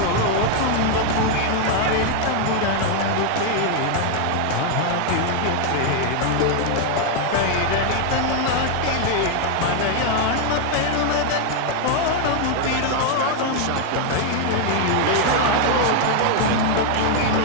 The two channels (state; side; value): different; both; correlation 0.00